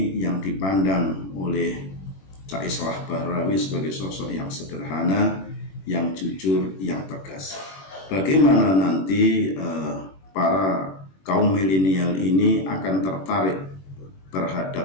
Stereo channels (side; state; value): right; late; 21 ms